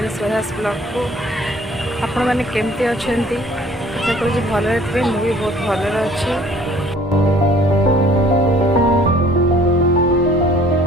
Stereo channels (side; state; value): both; normal; correlation 0.54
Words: स्वराज ब्लॉग को आपण मैंने केमती अच्छा आशा करूँ भलरे थे मुझे बहुत भलरे अच्छी।